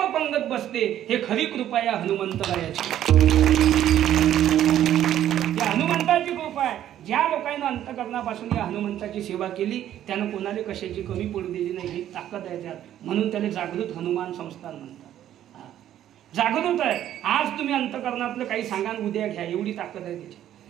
पंगत बसते. हे खरी कृपा या हनुमंतरायाची. या हनुमंताची कृपा आहे. ज्या लोकांना अंतकरणापासून या हनुमंताची सेवा केली त्यानं कोणाला कशाची कमी पडू दिली नाही. ही ताकद आहे त्यात. म्हणून त्याला जागृत हनुमान संस्थान म्हणतात. जागृत आहे. आज तुम्ही अंतकरणातलं काही सांगा उद्या घ्या, एवढी ताकद आहे त्याची.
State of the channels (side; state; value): left; quieter; 11.6 dB